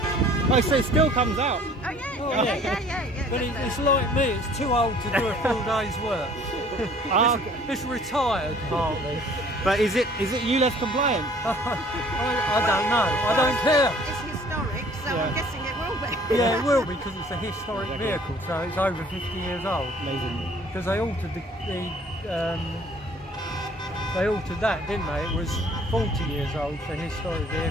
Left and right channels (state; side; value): normal; both; correlation 0.54